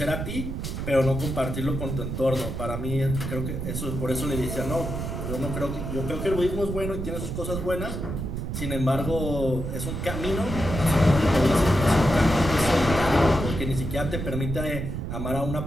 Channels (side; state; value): right; noise; rumble, 4 dB below the sound